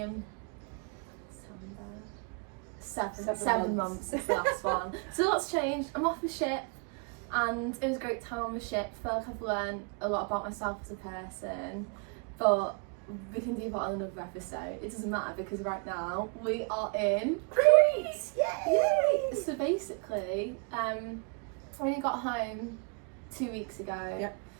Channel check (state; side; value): quieter; left; 35.3 dB